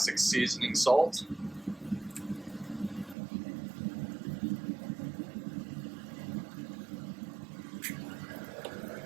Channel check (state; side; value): drops out; left; at 3.2 s